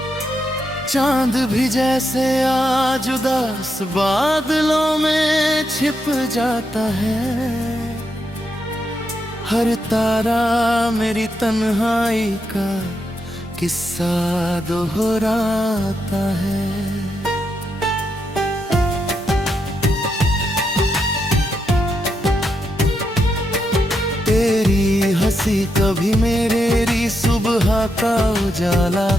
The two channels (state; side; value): normal; both; correlation 0.82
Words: चांद भी जैसे आज उदास बादलों में छिप जाता है। हर तारा मेरी तन्हाई का किस्सा दोहराता है। तेरी हंसी कभी मेरी सुबह का उजाला